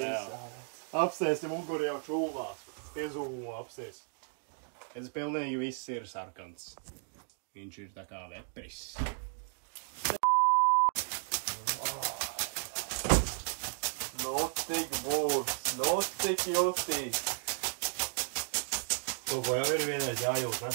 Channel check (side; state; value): left; silent; 55 dB below the other